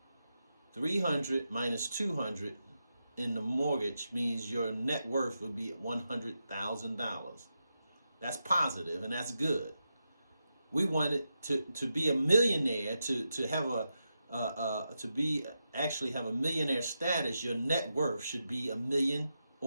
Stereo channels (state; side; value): inverted; both; correlation -0.87